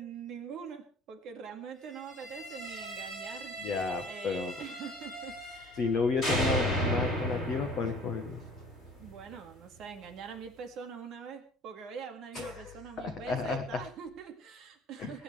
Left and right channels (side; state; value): both; normal; correlation 0.49